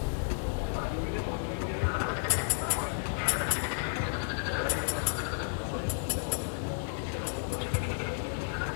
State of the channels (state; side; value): silent; right; digital silence